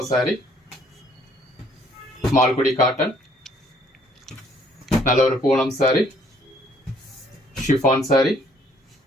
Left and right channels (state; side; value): normal; both; correlation 0.62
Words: சாரி, மால்குடி காட்டன், நல்ல ஒரு பூனம் சாரி, ஷிஃபான் சாரி.